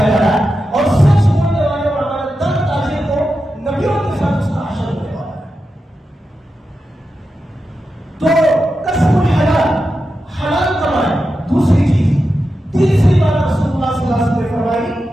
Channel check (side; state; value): both; normal; correlation 0.90